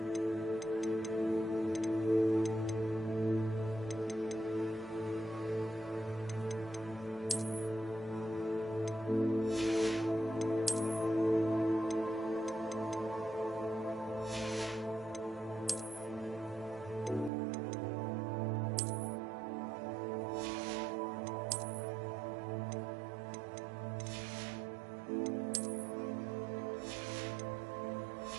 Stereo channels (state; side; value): drops out; left; at 17.3 s